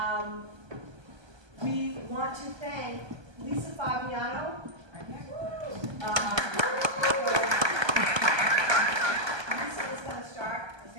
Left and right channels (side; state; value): left; late; 1.2 ms